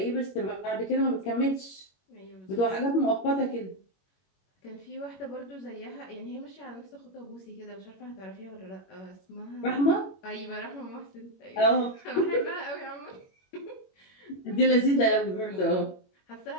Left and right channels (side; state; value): right; late; 21 ms